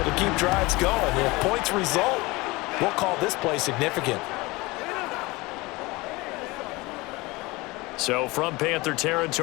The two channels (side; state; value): right; quieter; 22.7 dB